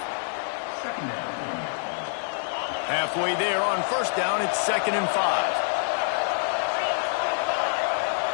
Halfway there on first down, it's 2nd and 5.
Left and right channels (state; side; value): silent; right; digital silence